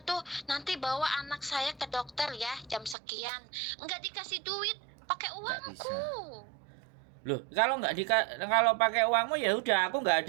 tuh nanti bawa anak saya ke dokter ya jam sekian. Nggak dikasih duit, pakai uangku. Loh, kalau pakai uangmu ya udah, aku nggak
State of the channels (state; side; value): drops out; left; at 3.0 s